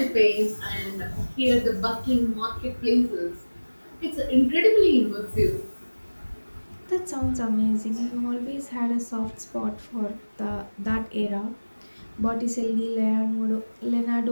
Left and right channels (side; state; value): both; inverted; correlation -1.00